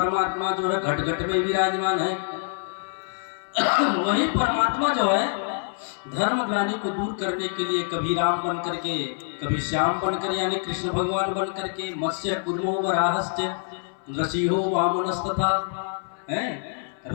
जो है घट घट में विराजमान है, वही परमात्मा जो है धर्म ग्लानि को दूर करने के लिए कभी राम बन करके, कभी श्याम बन कर यानी कृष्ण भगवान बन करके, मत्स्य कुर्मो वराहस्य नृसिंहो वामनस्तथा है,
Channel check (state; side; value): silent; right; 61 dB below the other